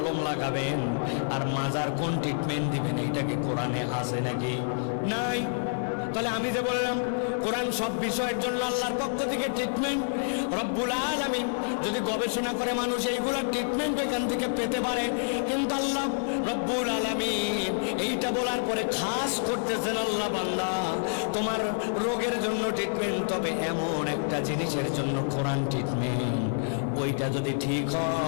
লাগাবেন আর মাজার কোন ট্রিটমেন্ট দিবেন, এইটাকে কোরআনে আছে নাকি? নাই। তাহলে আমি যে বললাম কোরআন সব বিষয়ের জন্য আল্লাহর পক্ষ থেকে ট্রিটমেন্ট। রব্বুল আলামিন যদি গবেষণা করে মানুষ এইগুলোর ট্রিটমেন্ট এখান থেকে পেতে পারে, কিন্তু আল্লাহ রব্বুল আলামিন এইটা বলার পরে খাস করতেছেন, আল্লাহ বান্দা তোমার রোগের জন্য ট্রিটমেন্ট, তবে এমন একটা জিনিসের জন্য কোরআন ট্রিটমেন্ট, ওইটা যদি ঠিক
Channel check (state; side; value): silent; right; 59 dB below the other